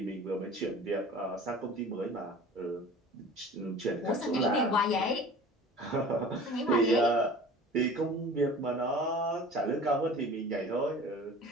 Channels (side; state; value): both; normal; correlation 0.42